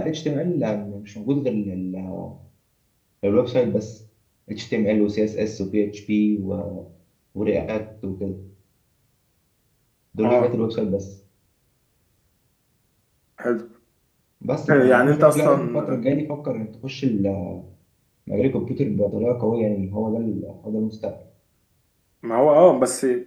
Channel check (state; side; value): identical; both; correlation 1.00